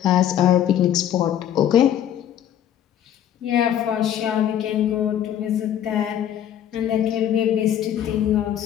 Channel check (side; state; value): right; quieter; 10.4 dB